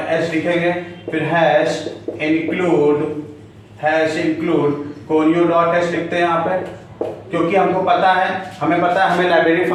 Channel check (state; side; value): identical; both; correlation 1.00